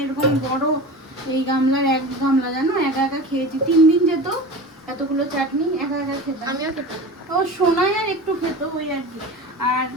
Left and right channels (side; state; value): both; normal; correlation 0.32